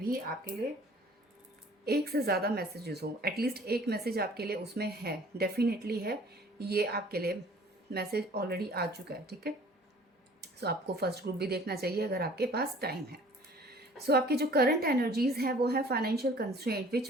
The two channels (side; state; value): both; normal; correlation 0.51